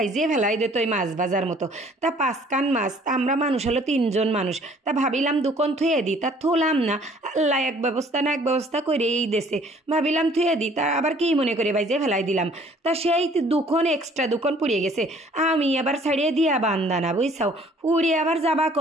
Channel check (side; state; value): both; normal; correlation 0.56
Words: ফেলাই দিত ওই মাছ ভাজার মতো? তা 5 কান মাছ, তা আমরা মানুষ হলো 3জন মানুষ, তা ভাবিলাম দুকন থুয়ে দিই, তা থুলাম না। আল্লাহ এক ব্যবস্থা না এক ব্যবস্থা করে এই দেশে, ভাবিলাম থুয়ে দিই, তা আবার কি মনে করে বাইজিয়ে ফেলাই দিলাম। তা সেই দুখন এক্সট্রা দুখন পুড়িয়ে গেছে, আমি আবার ছাড়িয়ে দিয়া বান্দানা, বুঝছাও, পুড়িয়ে আবার যাবা